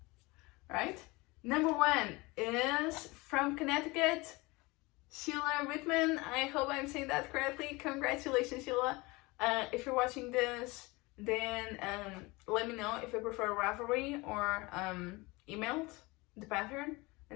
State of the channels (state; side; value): quieter; right; 23.8 dB